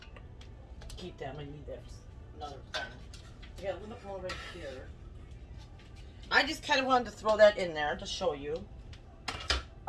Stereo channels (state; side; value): identical; both; correlation 1.00